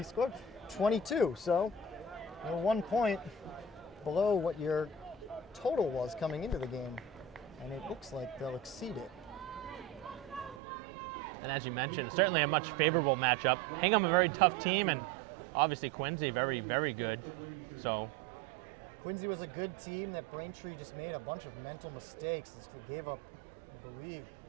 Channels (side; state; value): left; drops out; at 10.6 s